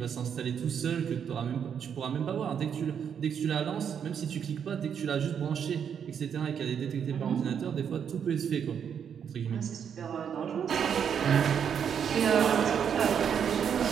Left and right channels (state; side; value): quieter; left; 7.8 dB